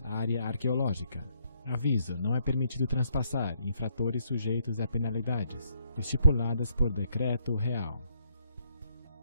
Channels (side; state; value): both; inverted; correlation -0.71